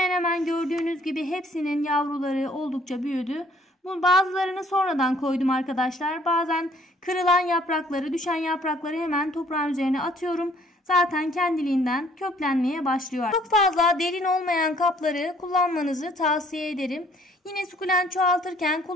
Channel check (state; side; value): normal; both; correlation 0.60